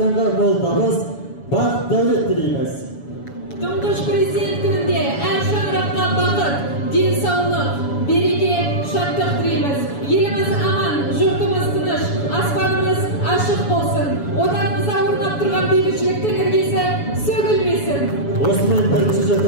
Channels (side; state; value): right; late; 7.1 ms